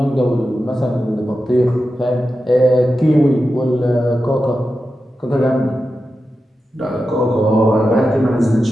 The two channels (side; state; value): both; normal; correlation 0.91